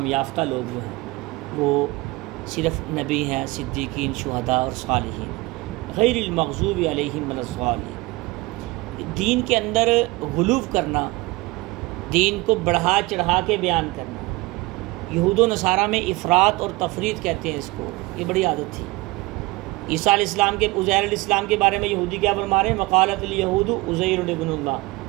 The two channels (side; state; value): left; quieter; 22.0 dB